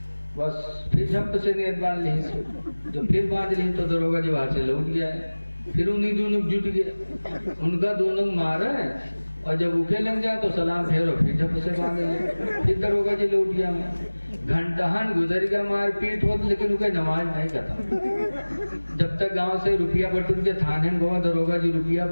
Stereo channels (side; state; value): both; inverted; correlation -1.00